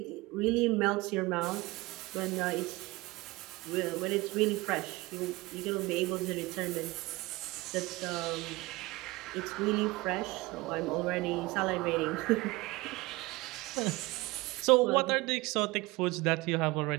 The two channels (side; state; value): left; quieter; 21.9 dB